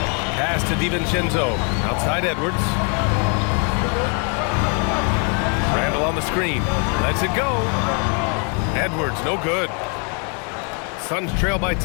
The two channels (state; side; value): quieter; right; 38.2 dB